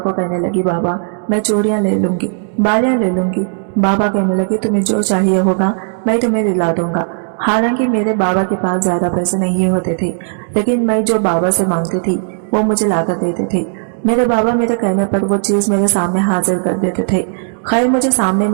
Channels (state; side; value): silent; left; digital silence